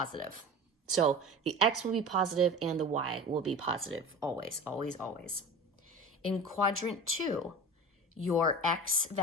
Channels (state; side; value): normal; both; correlation 0.34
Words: So the x will be positive and the y will be positive, always, always, always. In quadrant 2, your x